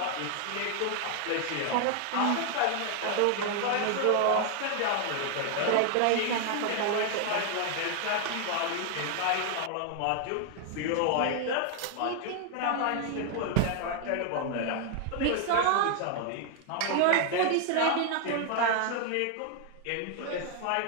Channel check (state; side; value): different; both; correlation 0.00